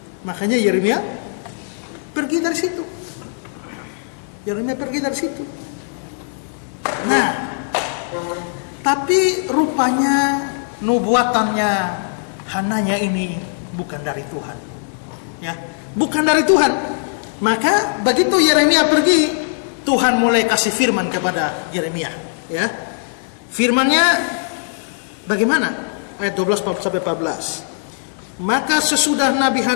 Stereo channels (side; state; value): right; silent; 66 dB below the other